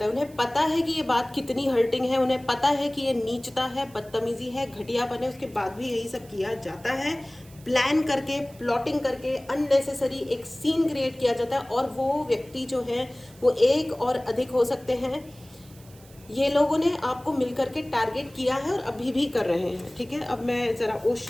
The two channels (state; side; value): noise; right; hiss, 25 dB below the sound